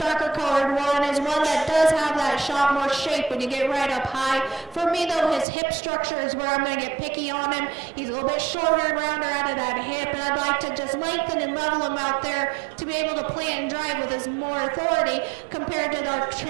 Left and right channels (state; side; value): drops out; left; at 5.5 s